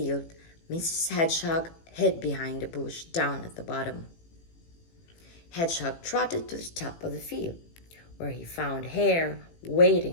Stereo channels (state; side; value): late; right; 18 ms